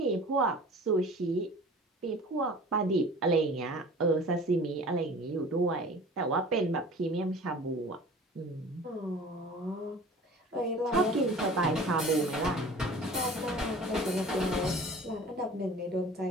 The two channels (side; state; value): both; normal; correlation 0.43